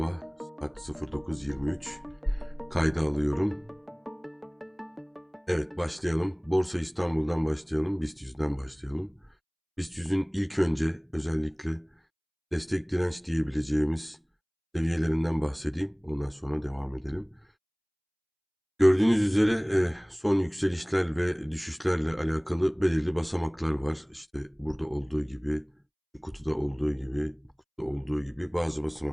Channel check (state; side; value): identical; both; correlation 1.00